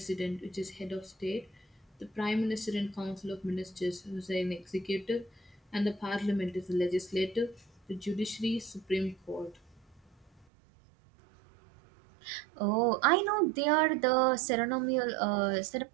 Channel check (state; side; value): drops out; left; at 10.5 s